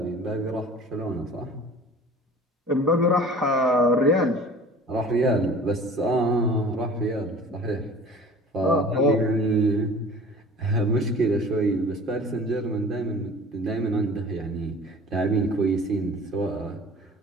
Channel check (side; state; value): both; normal; correlation 0.44